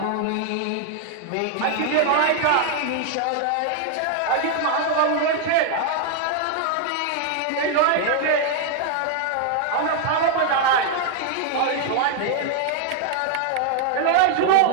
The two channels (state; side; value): different; both; correlation 0.00